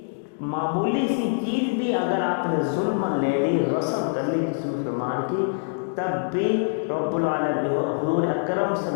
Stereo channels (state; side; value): silent; right; digital silence